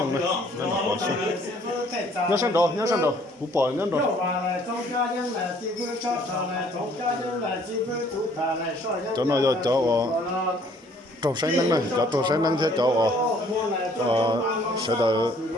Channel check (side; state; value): both; normal; correlation 0.60